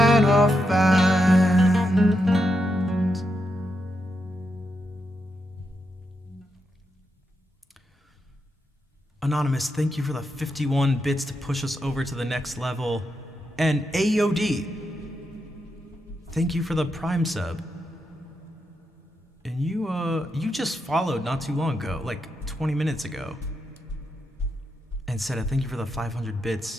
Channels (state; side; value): normal; both; correlation 0.84